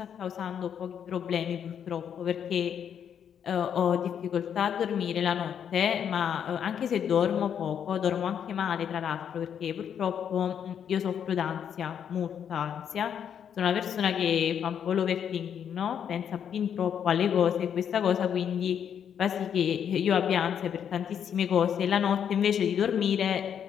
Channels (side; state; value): right; quieter; 8.4 dB